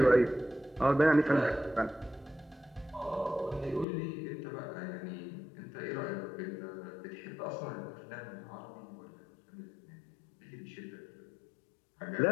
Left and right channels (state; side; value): drops out; right; at 3.9 s